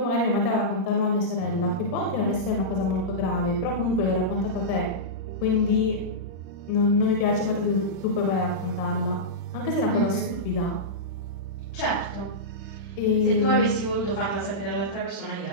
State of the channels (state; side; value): late; right; 36 ms